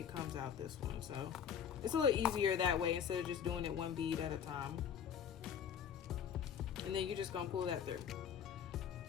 comes out this one, so it's a little easier that way instead of just doing it one bead at a time. And then you're just gonna pull that through,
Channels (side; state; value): right; quieter; 8.0 dB